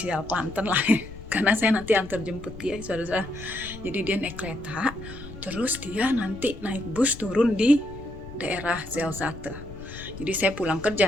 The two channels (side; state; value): left; noise; rumble, 14 dB below the sound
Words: Klanten lah ya. Karena saya nanti antar jemput dia saudara-saudara. Jadi dia naik kereta, terus dia nanti naik bus turun di daerah Zelzate. Jadi saya pulang kerja